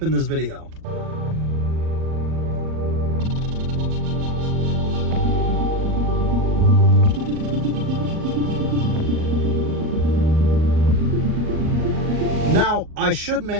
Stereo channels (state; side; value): late; left; 38 ms